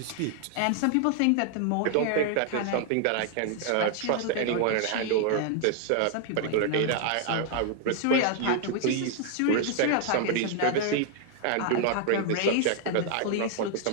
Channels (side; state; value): both; different; correlation 0.00